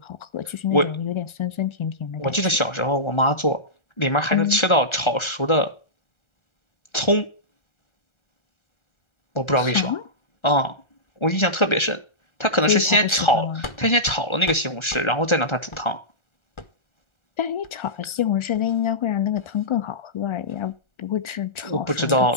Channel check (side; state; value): right; late; 1.3 ms